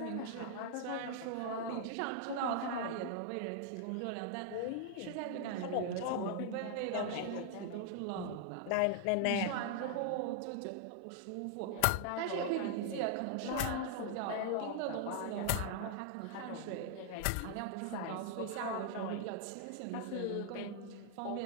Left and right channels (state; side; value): different; both; correlation 0.00